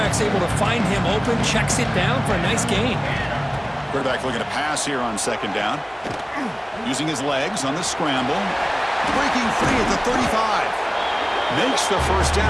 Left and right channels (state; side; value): identical; both; correlation 1.00